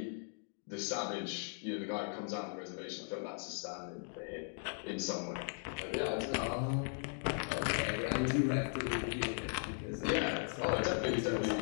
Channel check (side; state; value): right; silent; 52 dB below the other